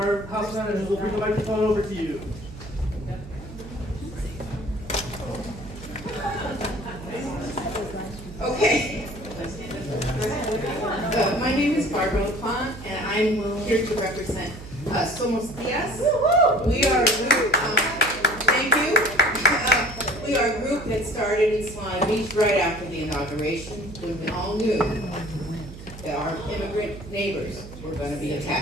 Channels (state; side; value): noise; right; hum, 14 dB below the sound